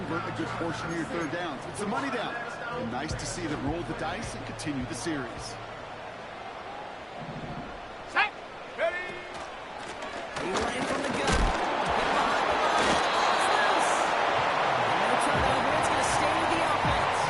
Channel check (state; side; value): identical; both; correlation 1.00